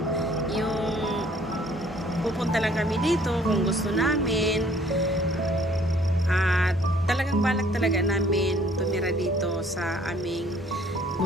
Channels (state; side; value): normal; both; correlation 0.58